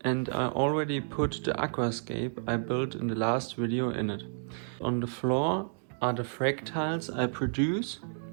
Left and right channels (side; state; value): left; silent; digital silence